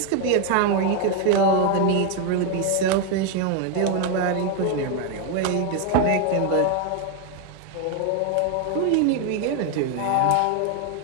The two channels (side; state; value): both; different; correlation 0.01